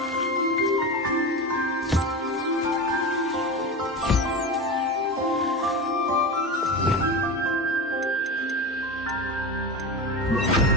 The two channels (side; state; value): both; normal; correlation 0.24